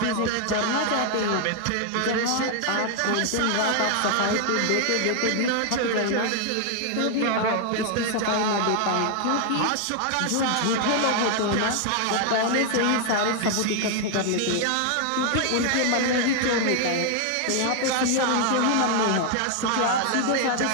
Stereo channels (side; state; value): both; different; correlation 0.00